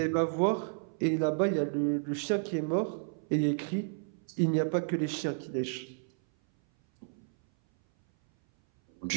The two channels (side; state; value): left; silent; 57 dB below the other